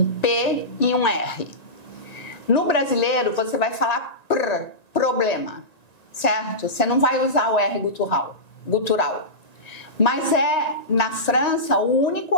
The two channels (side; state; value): right; late; 1.9 ms